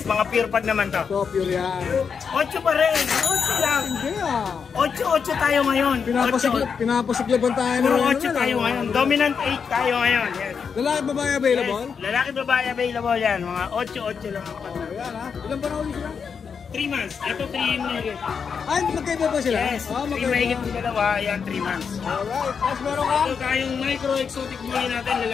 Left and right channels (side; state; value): right; quieter; 6.3 dB